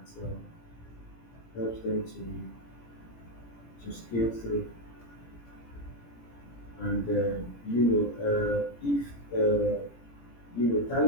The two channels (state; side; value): late; right; 17 ms